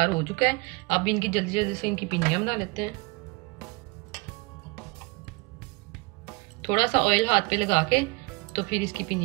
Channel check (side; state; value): left; quieter; 27.1 dB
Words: हो चुका है। अब इनकी जल्दी जल्दी से इनकी पिनियां बना लेते हैं। थोड़ा सा ऑयल हाथ पे लगा के तो फिर इसकी